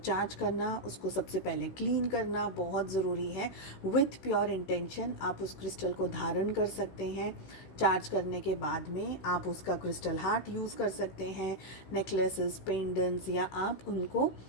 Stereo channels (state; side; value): late; right; 16 ms